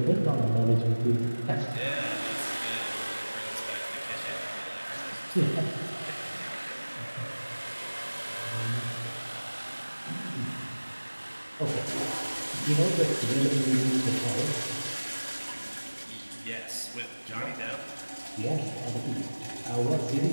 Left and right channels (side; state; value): both; inverted; correlation -1.00